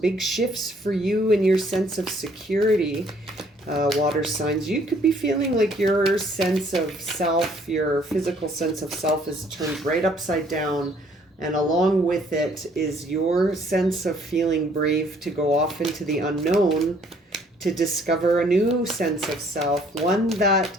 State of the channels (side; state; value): both; normal; correlation 0.62